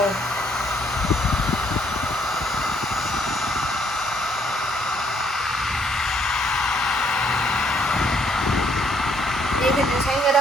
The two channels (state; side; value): normal; both; correlation 0.69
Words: You can just hang it